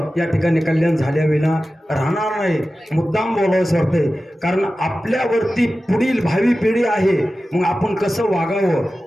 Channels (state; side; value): normal; both; correlation 0.94